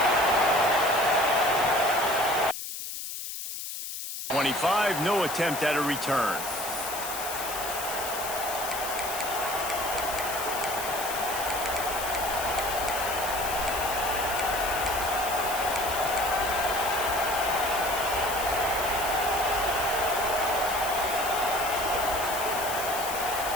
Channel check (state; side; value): noise; left; hiss, 7 dB below the sound